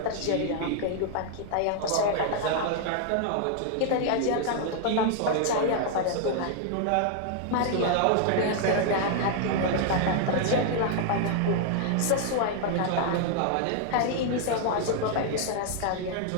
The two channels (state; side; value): different; both; correlation 0.00